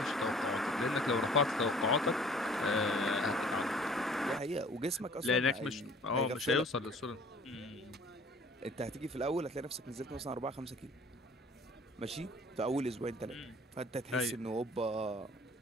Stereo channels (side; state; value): both; normal; correlation 0.52